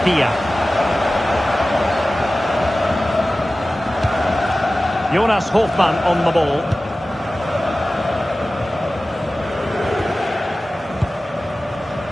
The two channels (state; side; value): normal; both; correlation 0.96